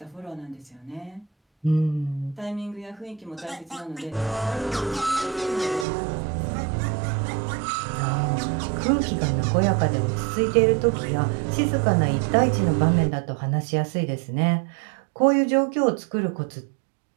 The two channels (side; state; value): left; drops out; at 5.9 s